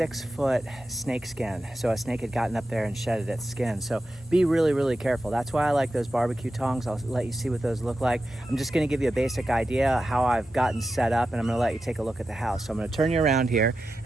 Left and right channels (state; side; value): normal; both; correlation 0.91